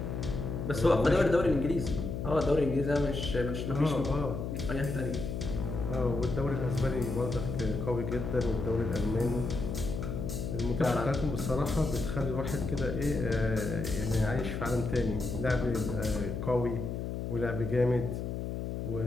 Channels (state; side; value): noise; left; hum, 4 dB below the sound